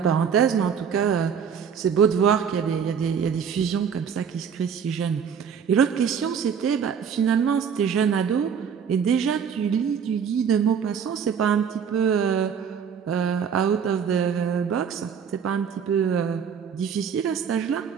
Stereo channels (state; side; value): quieter; left; 7.2 dB